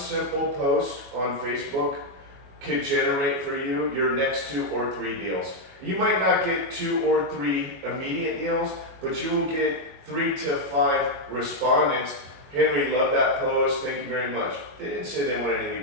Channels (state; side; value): late; left; 22 ms